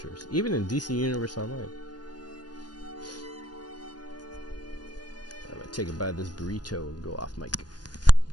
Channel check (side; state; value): right; late; 0.69 ms